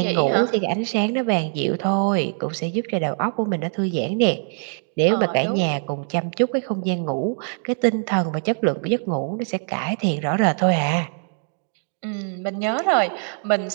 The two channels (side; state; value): left; silent; 59 dB below the other